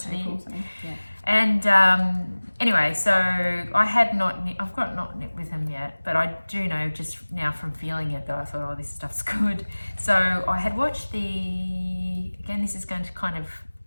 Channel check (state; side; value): inverted; both; correlation -1.00